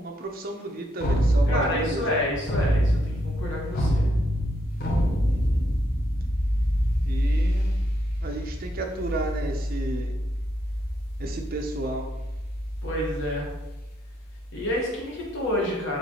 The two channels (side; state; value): both; normal; correlation 0.77